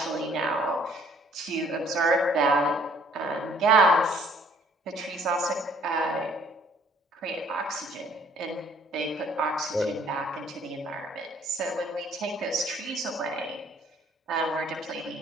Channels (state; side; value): normal; both; correlation 0.59